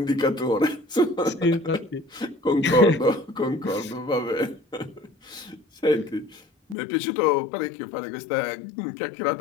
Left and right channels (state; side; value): drops out; right; at 6.8 s